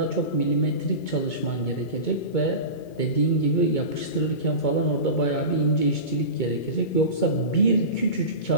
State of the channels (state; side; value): late; right; 2.2 ms